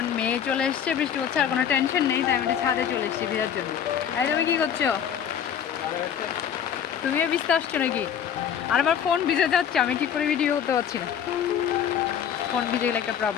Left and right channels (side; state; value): right; quieter; 8.6 dB